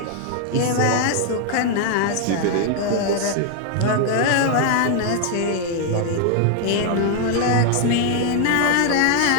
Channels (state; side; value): different; both; correlation 0.00